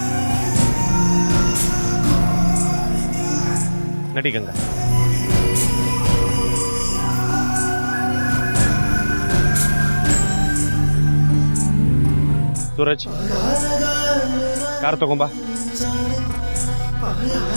ನಡಿ ಗಂಗಾ. ಸೂರಜ್, ಕಾರ್ ತಗೊಂಬಾ.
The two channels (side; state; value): both; inverted; correlation -1.00